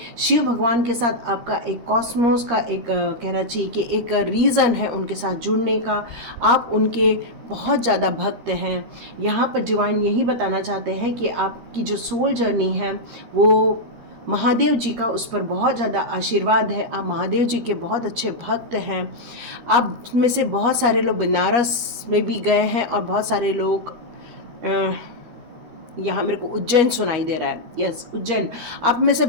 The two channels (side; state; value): left; late; 13 ms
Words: शिव भगवान के साथ आपका एक कॉस्मोस का एक कहना चाहिए कि एक रीज़न है उनके साथ जुड़ने का। आप उनके बहुत ज़्यादा भक्त हैं। यहाँ पर डिवाइन यही बताना चाहते हैं कि आपकी जो सोल जर्नी है वो महादेव जी का उस पर बहुत ज़्यादा आशीर्वाद है। आप महादेव जी के बहुत अच्छे भक्त हैं। आप में से बहुत सारे लोग बनारस में भी गए हैं और बहुत सारे लोग यहाँ मेरे को उज्जैन सुनाई दे रहा है, यस उज्जैन। आप में से